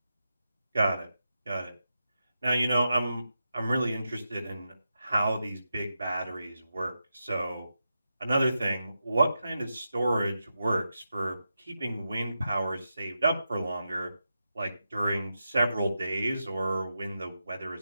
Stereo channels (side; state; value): both; inverted; correlation -0.88